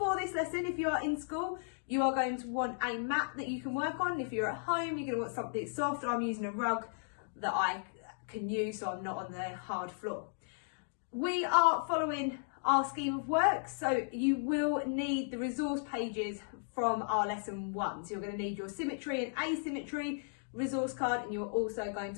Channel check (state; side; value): silent; right; digital silence